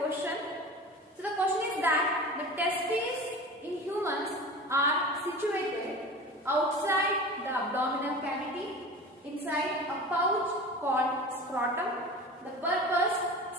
So the question is that the testes in humans are situated outside the abdominal cavity inside a pouch called scrotum. The purpose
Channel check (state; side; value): normal; both; correlation 0.35